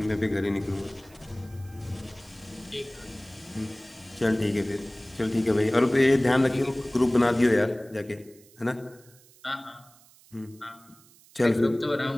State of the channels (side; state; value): right; noise; hiss, 26 dB below the sound